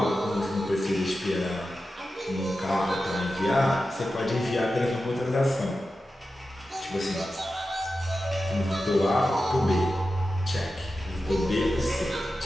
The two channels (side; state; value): both; normal; correlation 0.92